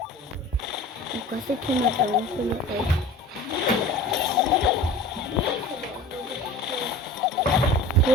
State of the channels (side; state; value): both; normal; correlation 0.39